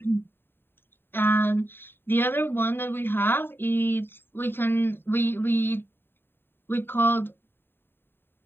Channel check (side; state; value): right; late; 0.10 ms